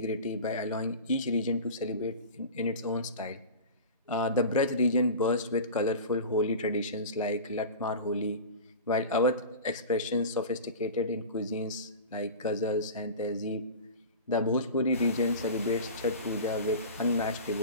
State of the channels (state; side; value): inverted; both; correlation -0.33